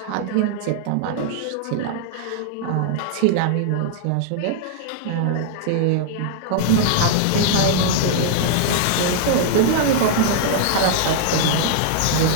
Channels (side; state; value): both; different; correlation -0.01